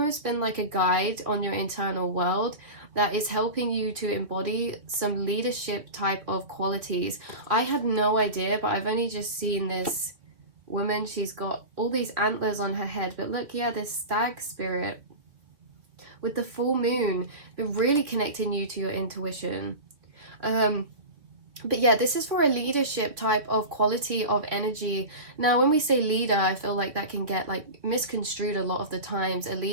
been like a guide on your internal world that is helping you to embody some leadership type of qualities. I had no idea, but I've only just seen this woman. She's got all these antlers on her head, but look, yeah, this stag spirit with the full moon, been really connecting you to your intuition. But yeah, this is for a leadership type of quality of energy. Now, when we say leader, I feel like that can get like misconstrued a lot of the times. A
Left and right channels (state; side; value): late; left; 3.1 ms